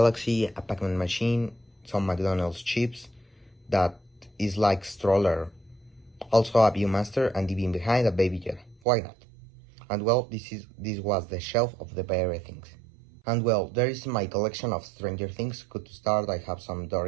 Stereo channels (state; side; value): drops out; left; at 8.8 s